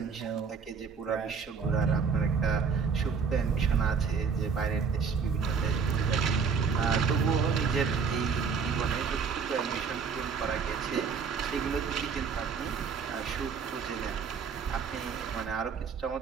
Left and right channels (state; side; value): quieter; left; 5.8 dB